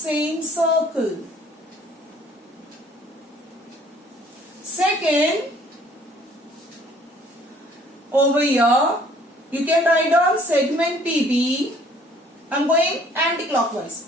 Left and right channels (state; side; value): normal; both; correlation 0.58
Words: circle. Second, over here, you can write down segment PB. I'm going anti-clockwise.